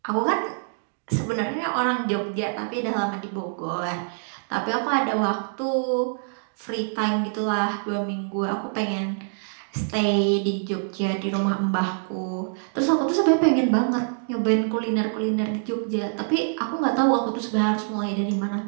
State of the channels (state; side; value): silent; left; digital silence